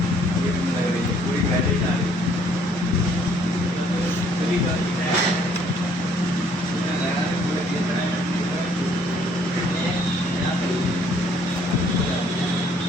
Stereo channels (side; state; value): right; noise; hum, 27 dB below the sound